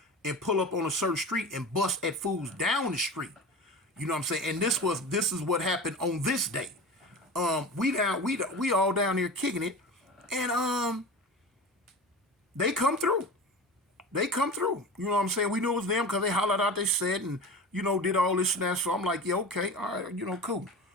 and pull up on a certain street and bust at fools down the street. You know what I'm saying? And this is what happened on this day. We all down there kicking it, and they come through. They come through. You know what I'm saying? We knew it was them because they hollered out, they said, and, did all this and that. So I'm like, yeah, okay, all right, cool.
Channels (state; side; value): normal; both; correlation 0.31